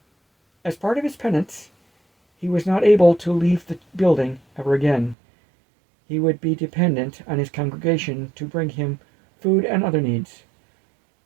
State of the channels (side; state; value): left; drops out; at 5.2 s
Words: As part of his penance, he was not able to leave the building ever again. He would be dependent on his congregation to bring him food and other needs.